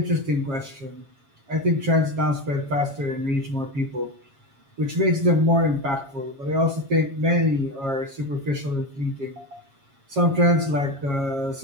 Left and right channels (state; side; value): late; left; 7.3 ms